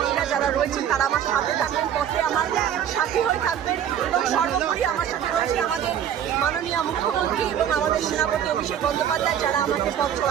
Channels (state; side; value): quieter; left; 9.6 dB